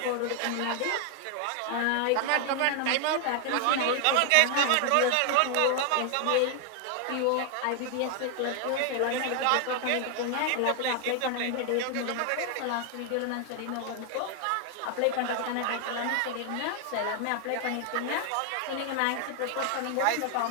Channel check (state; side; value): different; both; correlation 0.00